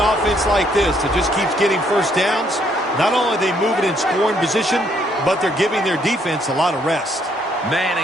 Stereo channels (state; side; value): normal; both; correlation 0.69